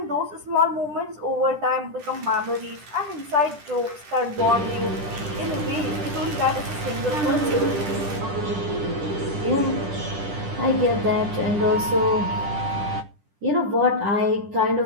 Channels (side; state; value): left; late; 10 ms